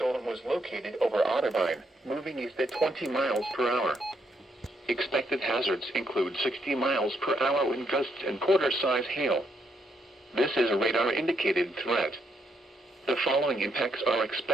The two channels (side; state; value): both; normal; correlation 0.76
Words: was located over Otterbein, moving east at 20 miles per hour. Expected hazards include 60 miles per hour wind gusts and quarter-size hail. This is a radar-indicated threat. The following impacts are